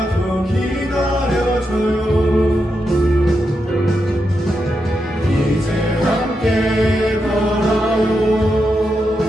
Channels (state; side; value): normal; both; correlation 0.85